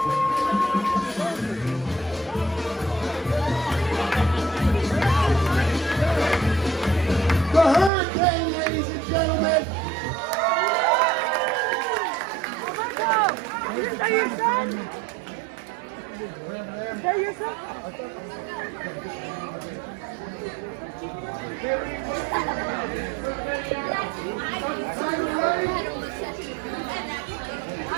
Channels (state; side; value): drops out; left; at 7.9 s